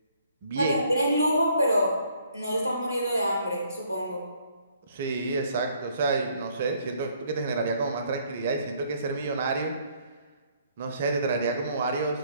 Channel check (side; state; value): both; inverted; correlation -0.65